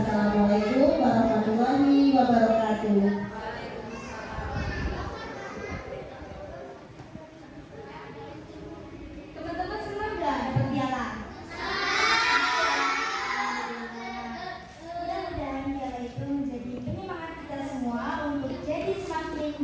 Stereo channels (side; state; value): both; identical; correlation 1.00